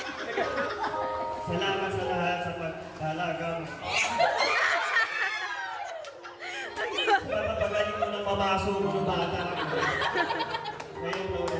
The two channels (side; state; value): both; identical; correlation 1.00